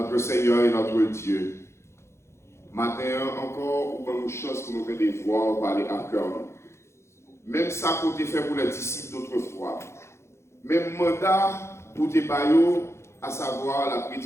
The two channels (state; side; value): late; right; 0.13 ms